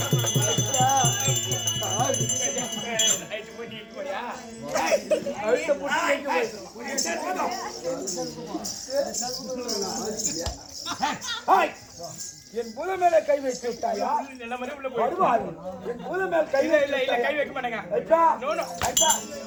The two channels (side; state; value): both; identical; correlation 1.00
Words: என் புத மேல கை வைத்து விட்டாயா? வருவாரு. என் புத மேல கை கை வைக்க மாட்டேங்க.